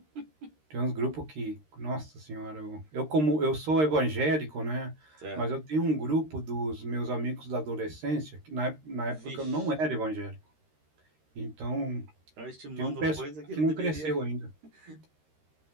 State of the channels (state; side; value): late; left; 13 ms